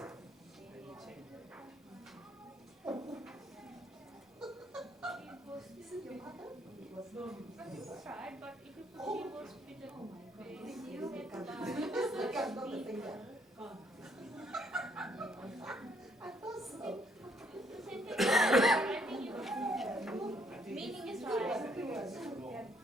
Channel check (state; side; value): normal; both; correlation 0.68